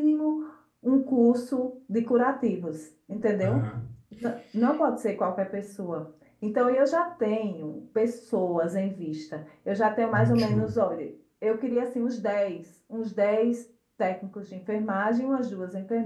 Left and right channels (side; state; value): both; identical; correlation 1.00